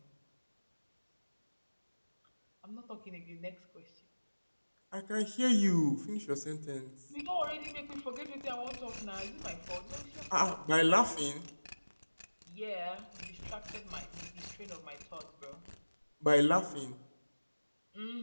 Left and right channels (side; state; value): both; inverted; correlation -1.00